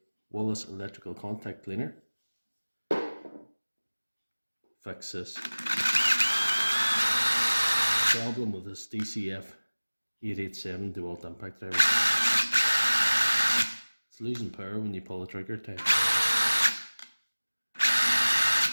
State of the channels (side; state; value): both; inverted; correlation -1.00